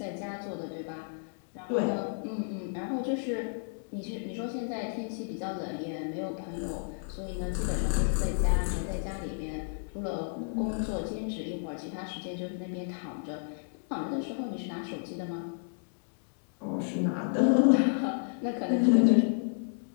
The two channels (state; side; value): silent; right; digital silence